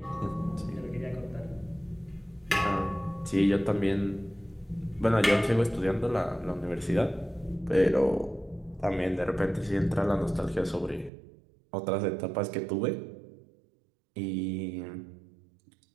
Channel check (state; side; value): drops out; left; at 11.1 s